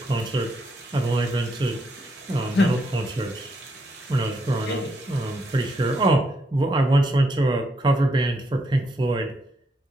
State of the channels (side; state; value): both; normal; correlation 0.77